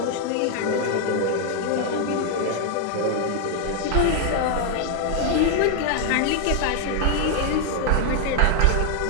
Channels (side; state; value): both; different; correlation 0.00